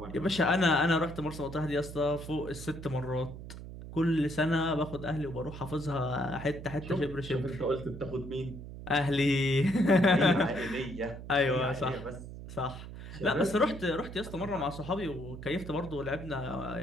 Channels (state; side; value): noise; right; hum, 11 dB below the sound